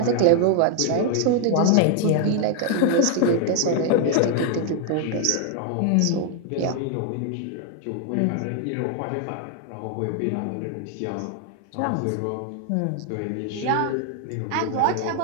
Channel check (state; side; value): different; both; correlation 0.00